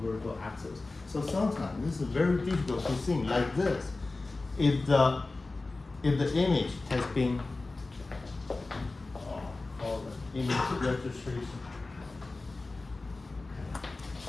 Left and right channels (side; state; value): right; quieter; 3.4 dB